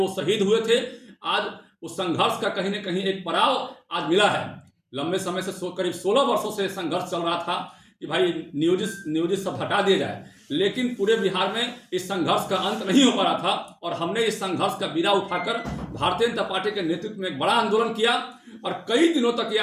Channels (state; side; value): identical; both; correlation 1.00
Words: शहीद हुए थे, आज उस संघर्ष का कहीं ना कहीं एक पड़ाव आज मिला है। लंबे समय से करीब 16 वर्षों से संघर्ष चल रहा था कि भाई नियोजित सब हटा दिया जाए, लेकिन पूरे बिहार में इस संघर्ष का अंत नहीं हो पा रहा था। और हमने इस संघर्ष का बीड़ा उठाकर भारतीय जनता पार्टी के नेतृत्व में एक बड़ा आंदोलन किया और कई दिनों तक यह